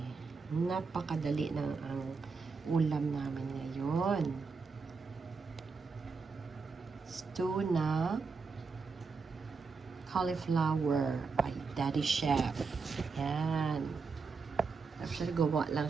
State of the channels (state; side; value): quieter; left; 4.7 dB